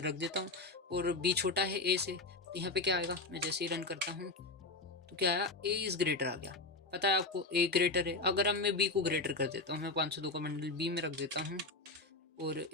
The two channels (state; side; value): quieter; right; 3.4 dB